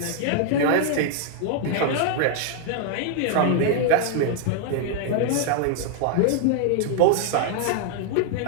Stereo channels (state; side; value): different; both; correlation 0.00